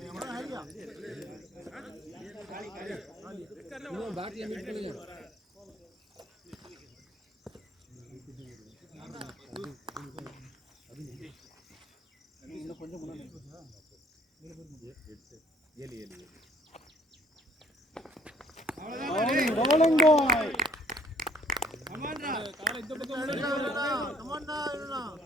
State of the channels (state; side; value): normal; both; correlation 0.60